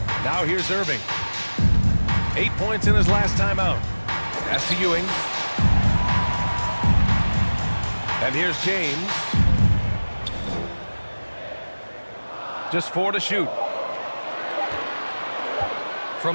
Now here's Irving. 8 points in his last time out. Pass to Ewing. And here's James. Just 4 to shoot.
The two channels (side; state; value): both; inverted; correlation -1.00